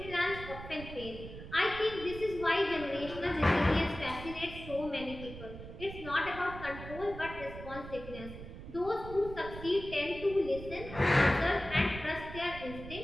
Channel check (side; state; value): right; noise; rumble, 12 dB below the sound